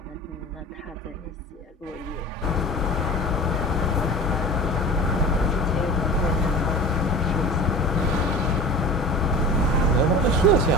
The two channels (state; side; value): normal; both; correlation 0.37